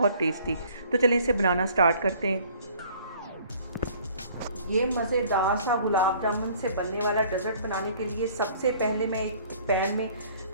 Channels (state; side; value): inverted; both; correlation -0.55